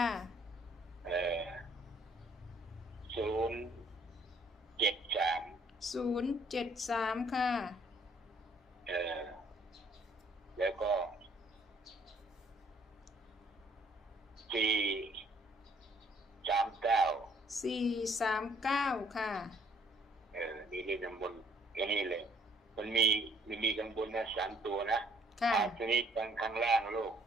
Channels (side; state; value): both; normal; correlation 0.63